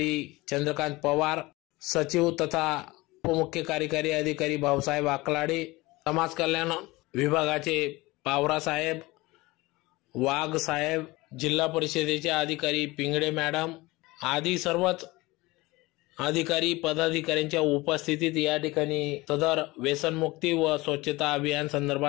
चंद्रकांत पवार, सचिव तथा उपमुख्य कार्यकारी अधिकारी भाऊसाहेब आकलाडे, समाज कल्याण विभागाचे पावरा साहेब, वाघ साहेब, जिल्हा परिषदेचे अधिकारी पिंगळे मॅडम आदी सर्वच अधिकारी पदाधिकाऱ्यांच्या उपस्थितीत या ठिकाणी सदर व्यसनमुक्ती व स्वच्छता अभियान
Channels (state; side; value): quieter; right; 21.4 dB